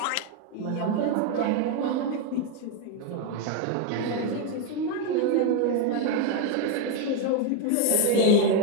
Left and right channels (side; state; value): both; different; correlation 0.01